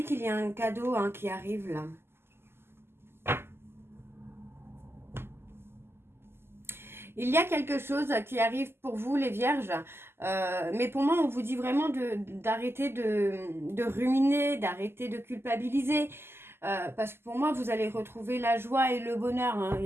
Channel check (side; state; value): left; late; 0.12 ms